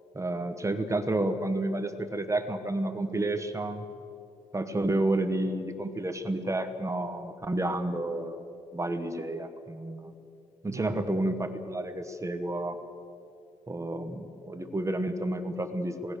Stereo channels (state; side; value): normal; both; correlation 0.82